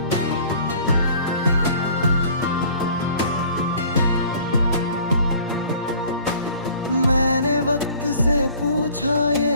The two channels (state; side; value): inverted; both; correlation -0.50